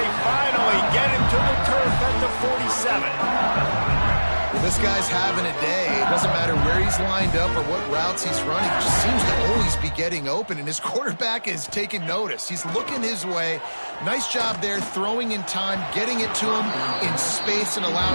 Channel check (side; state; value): both; inverted; correlation -1.00